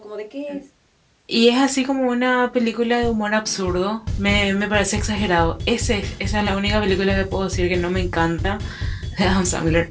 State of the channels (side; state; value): both; identical; correlation 1.00